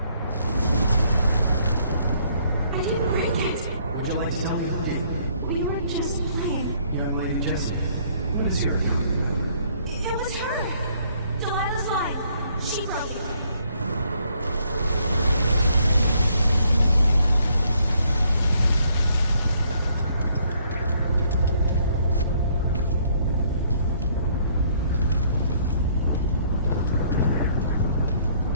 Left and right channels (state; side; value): inverted; both; correlation -0.66